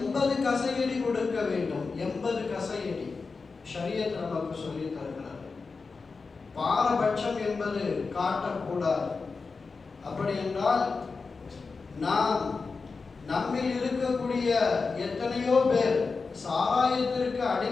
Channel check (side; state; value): right; quieter; 4.5 dB